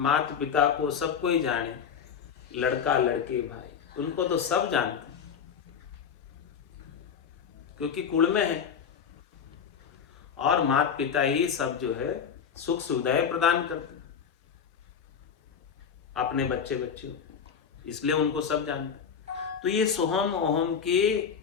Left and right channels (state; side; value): quieter; right; 7.2 dB